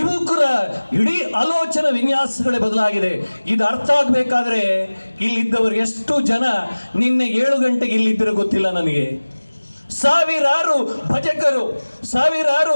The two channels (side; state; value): both; inverted; correlation -1.00